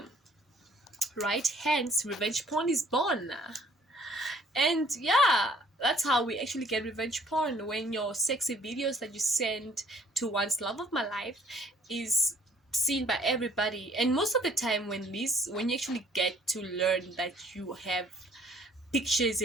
right? Hence revenge porn is born. And yeah, that's how we actually get revenge porn, when your sexy videos that you send to one's love of my life is seen by everybody. And most of the time when you actually get to learn that you have pictures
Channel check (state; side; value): normal; both; correlation 0.60